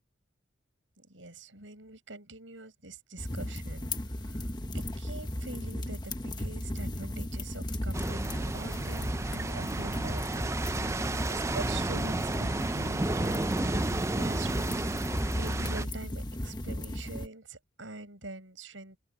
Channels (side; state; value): both; normal; correlation 0.74